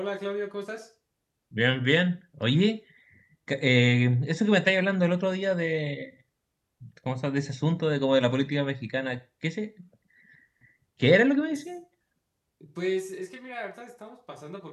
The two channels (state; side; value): identical; both; correlation 1.00